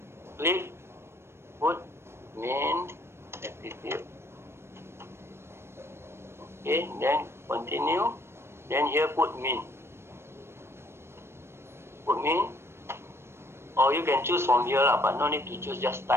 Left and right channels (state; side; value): late; left; 0.12 ms